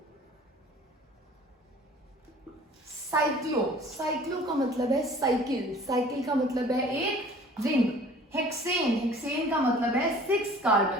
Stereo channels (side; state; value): both; normal; correlation 0.49